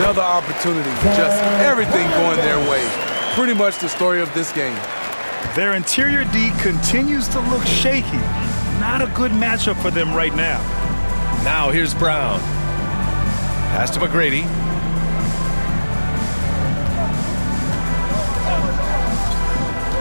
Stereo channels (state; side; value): inverted; both; correlation -1.00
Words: opportunity. Just everything going their way. Pretty much the story of this game. Their interior D continues to look shaky. Not a good matchup for them right now. Now here's Brown. Pass to McGrady.